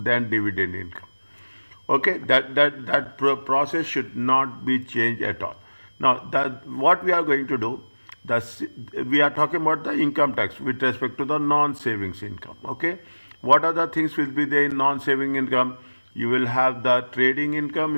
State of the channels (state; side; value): inverted; both; correlation -1.00